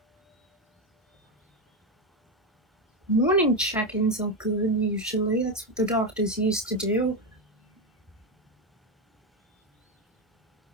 Morning check-ins are good, usually. That's what the doctors used to do.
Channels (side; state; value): both; normal; correlation 0.10